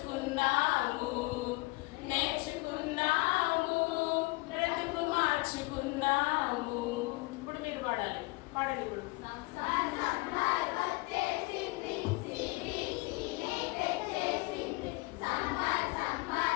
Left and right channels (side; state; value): right; quieter; 24.1 dB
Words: నేర్చుకుందాము, బ్రతుకు మార్చుకుందాము. ఇప్పుడు మీరు పాడాలి. పాడండి ఇప్పుడు.